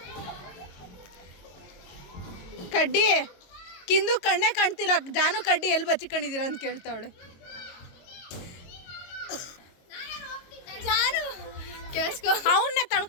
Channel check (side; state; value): right; late; 22 ms